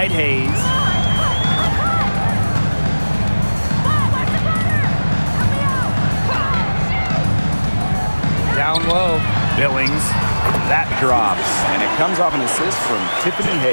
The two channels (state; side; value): inverted; both; correlation -1.00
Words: Hayes. Down low. Billings. That drops. And it comes off an assist from Tiffany